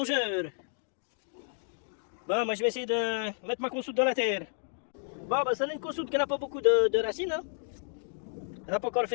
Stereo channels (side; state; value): right; silent; digital silence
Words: Bon, moi je vais essayer de mettre ma consoude dans la terre. Bon, bah, ça n'est une consoude qui n'a pas beaucoup de racines. Hein. Elle n'a pas encore